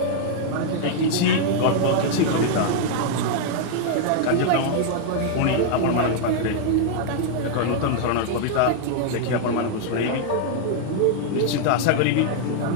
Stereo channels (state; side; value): different; both; correlation 0.00